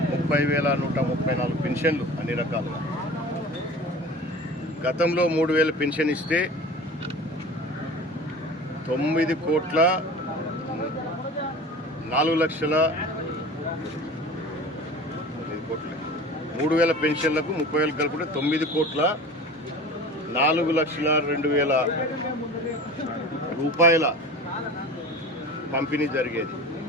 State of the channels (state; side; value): normal; both; correlation 0.38